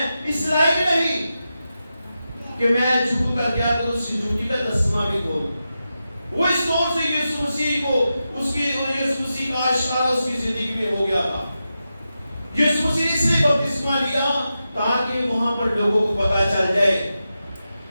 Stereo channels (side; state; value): both; inverted; correlation -0.90